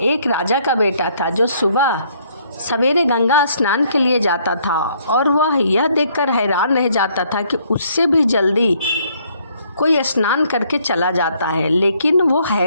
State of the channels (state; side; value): inverted; both; correlation -0.66